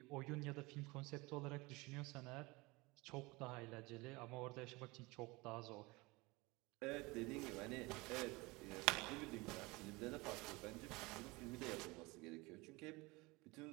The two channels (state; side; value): quieter; left; 23.8 dB